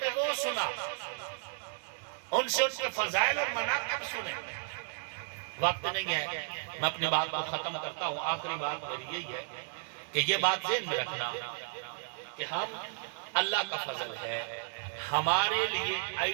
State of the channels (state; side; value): silent; left; digital silence